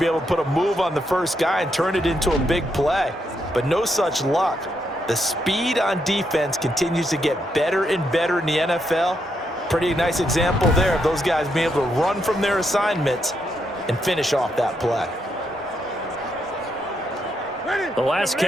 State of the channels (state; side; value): normal; both; correlation 0.79